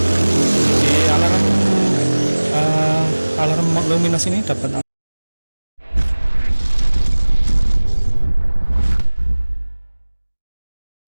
Di alarm luminos ini dapat alarm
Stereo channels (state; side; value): inverted; both; correlation -1.00